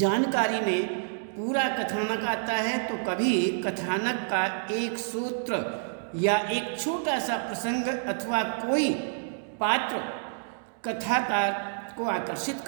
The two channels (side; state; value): left; silent; digital silence